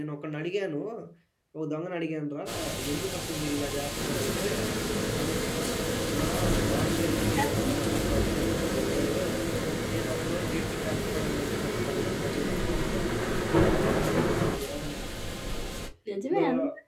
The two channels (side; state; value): both; identical; correlation 1.00